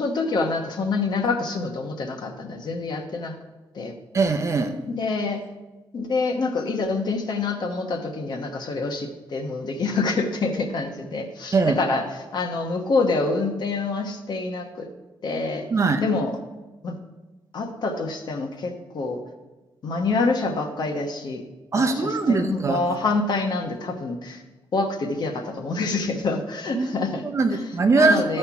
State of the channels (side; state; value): both; normal; correlation 0.61